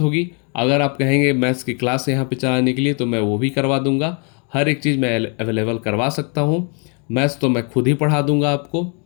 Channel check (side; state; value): right; quieter; 37.0 dB